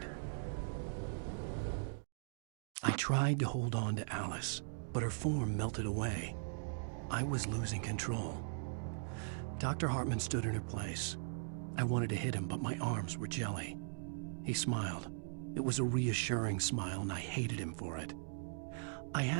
I tried to hold on to Alice, but her form melted away. I was losing control. Dr. Hartman stood in her place. I wanted to hit him, but my arms were jelly. He smiled. It was a reassuring smile, and I hated him for it. I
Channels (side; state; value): left; silent; digital silence